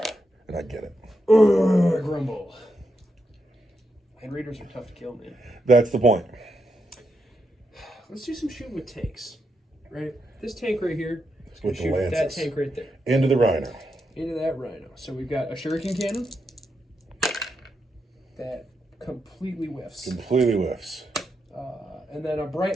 And I get it. Grumble. Land Raiders are tough to kill, man. That's the point. Let's do some shooting with tanks. Right? This tank right here is going With to the shoot lances. that tank right there. Into the Rhino. Into that Rhino. So we've got a Shuriken Cannon that completely whiffs. Completely whiffs. And then a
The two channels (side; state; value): both; normal; correlation 0.83